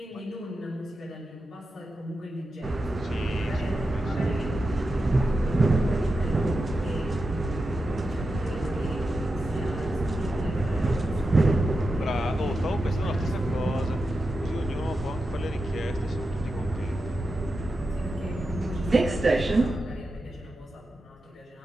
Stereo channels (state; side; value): normal; both; correlation 0.90